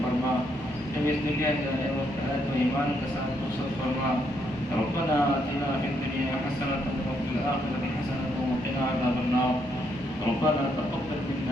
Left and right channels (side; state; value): right; noise; hum, 23 dB below the sound